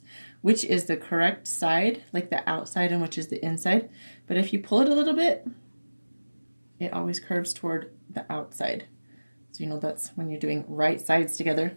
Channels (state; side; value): inverted; both; correlation -1.00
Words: which is the correct side, like the outside, and which is the inside. But if you pull it a little bit, it always curves toward the outside. So you know that's when you're doing right sides together,